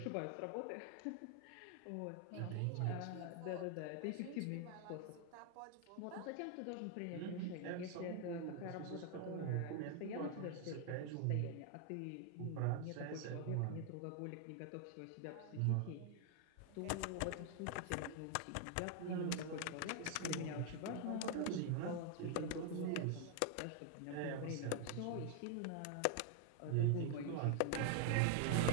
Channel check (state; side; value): different; both; correlation 0.00